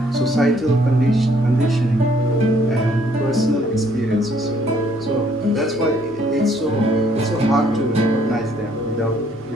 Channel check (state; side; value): normal; both; correlation 0.65